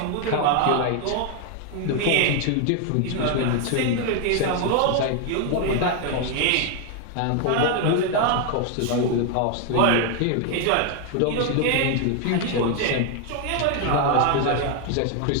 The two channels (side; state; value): both; different; correlation 0.01